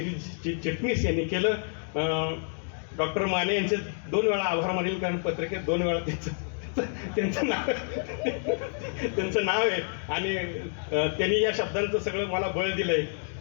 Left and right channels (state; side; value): silent; right; 59 dB below the other